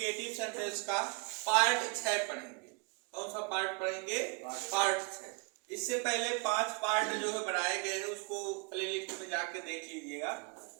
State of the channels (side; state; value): left; quieter; 31.4 dB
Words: सेंटेंस का पार्ट 6 पढ़ेंगे। कौन सा पार्ट पढ़ेंगे? पार्ट 6। इससे पहले 5 पार्ट जो है बनाए गए हैं, उसको प्लेलिस्ट में जाके देख लीजिएगा।